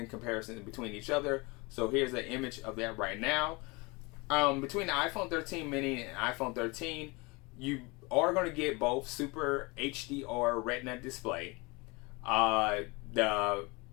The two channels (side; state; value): right; quieter; 26.6 dB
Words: comparison between each other. So here's an image of that right now. Between the iPhone 13 mini and iPhone 13, you are going to get both Super HDR Retina display. The